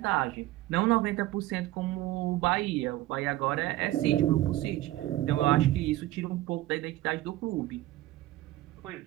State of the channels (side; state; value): left; quieter; 16.2 dB